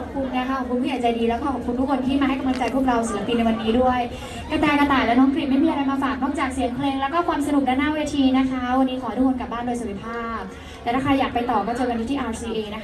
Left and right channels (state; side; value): identical; both; correlation 1.00